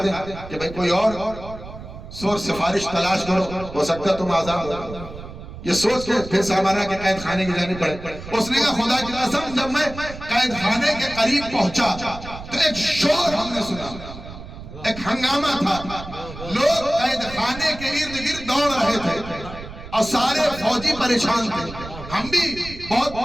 دیں کہ بھئی کوئی اور سور سفارش تلاش کرو ہو سکتا ہے تم آزاد ہو. یہ سوچ کے پھر سامانہ کے قید خانے کی جانب پڑے. اس نے کہا خدا کی قسم جب میں قید خانے کے قریب پہنچا تو ایک شور ہم نے سنا, ایک ہنگامہ تھا. لوگ قید خانے کے ارد گرد دوڑ رہے تھے اور سارے فوجی پریشان تھے. ہم بھی بہت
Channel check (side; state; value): right; noise; rumble, 13 dB below the sound